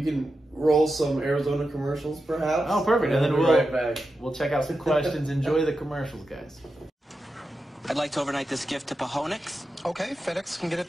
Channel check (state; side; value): normal; both; correlation 0.90